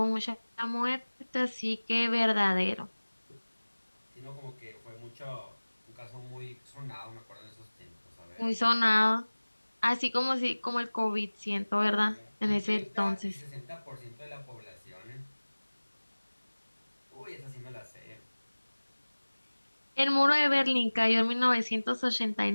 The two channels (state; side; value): inverted; both; correlation -1.00